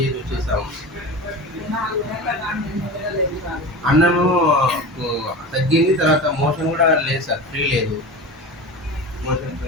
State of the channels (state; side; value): normal; both; correlation 0.30